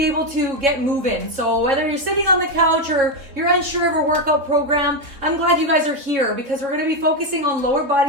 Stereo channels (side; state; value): left; late; 3.7 ms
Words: able to get moving. So whether you're sitting on the couch or you're unsure of a workout program, I'm glad you guys are here because we're going to be focusing on lower